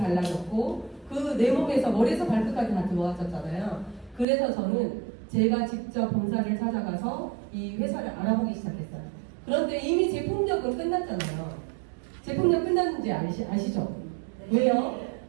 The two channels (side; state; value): left; drops out; at 4.2 s